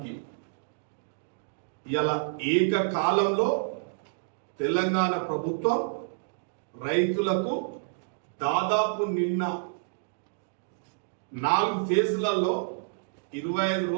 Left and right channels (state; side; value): silent; left; digital silence